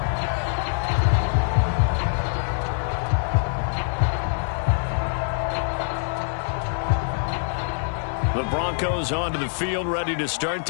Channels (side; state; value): right; silent; digital silence